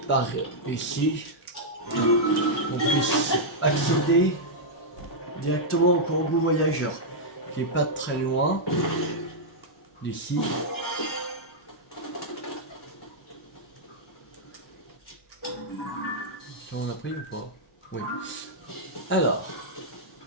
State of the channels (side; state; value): both; normal; correlation -0.07